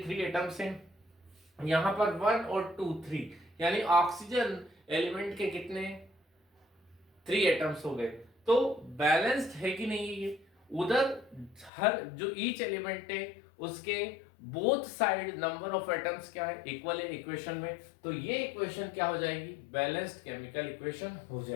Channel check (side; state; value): right; drops out; at 11.7 s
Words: एटम्स हैं, यहाँ पर 1 और 2 3, यानी ऑक्सीजन एलिमेंट के कितने 3 एटम्स हो गए। तो बैलेंस्ड है कि नहीं ये। उधर हर जो ईच एलिमेंट है उसके both side number of atoms क्या है, इक्वल है इक्वेशन में। तो ये इक्वेशन क्या हो जाएगी, बैलेंस्ड केमिकल इक्वेशन हो